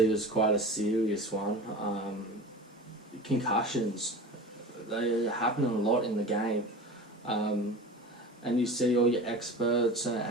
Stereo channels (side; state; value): both; normal; correlation 0.34